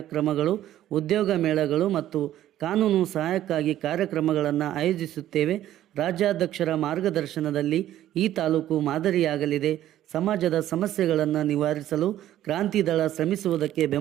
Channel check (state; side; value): quieter; left; 12.7 dB